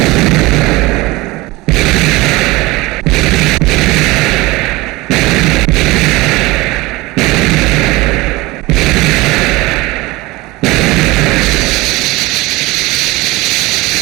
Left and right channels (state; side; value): quieter; left; 21.4 dB